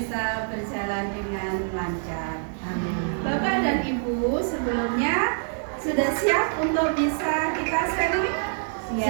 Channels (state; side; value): silent; left; 61 dB below the other